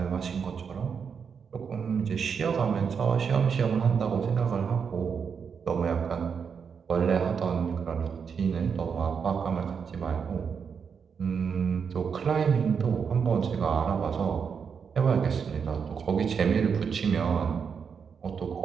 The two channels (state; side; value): quieter; left; 6.4 dB